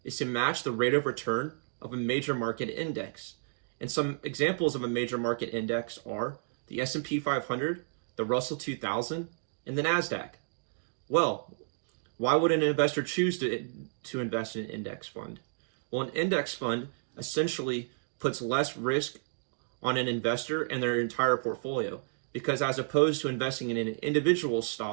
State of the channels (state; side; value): silent; left; digital silence